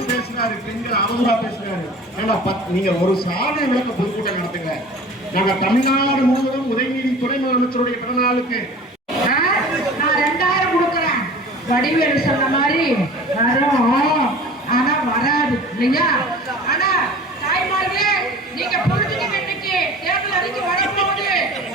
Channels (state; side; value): normal; both; correlation 0.41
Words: பேசுறாரு, பெண்கள் அவங்களா பேசுறாரு. நீங்க ஒரு சாதனை விளக்க பொதுக்கூட்டம் நடத்துங்க. நாங்க தமிழ்நாடு முழுவதும் உதயநிதி துணை முதலமைச்சருடைய பிறந்த நாளுக்கு நான் 2000 கொடுக்குறேன். வடிவேலு சொன்ன மாதிரி வரும், ஆனா வராது இல்லையா? ஆனா தாய்மார்களே, நீங்க பொழுதுக்கு இன்னைக்கு தேர்தல் அறிக்கை வரப்போகுது.